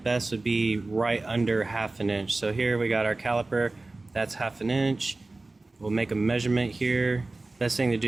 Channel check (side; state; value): left; quieter; 3.2 dB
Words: would be right under 1/2 inch. So here we got our caliper, that's 1/2 inch. We'll make a measurement here. Best thing to